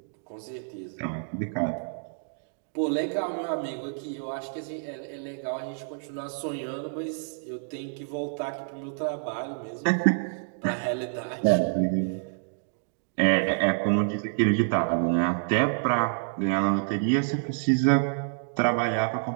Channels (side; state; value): left; silent; digital silence